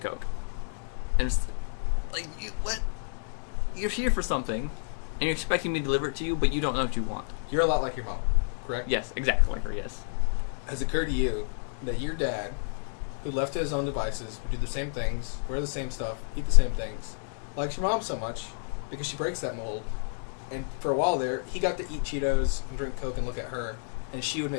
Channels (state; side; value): silent; right; digital silence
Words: And it's like, what? You're here for something, and you're expecting me to deliver it to you, but you don't know what you want. You're a lot like your mom, correct? Yes, exactly like her, yes. Has it occurred to you that your dad, who left to his own devices, would do the same things, wear the same stuff, eat the same things, likes your mom so much because she breaks that mold? And for a while there, he got to eat Cheetos and drink Coke and look at her, and she would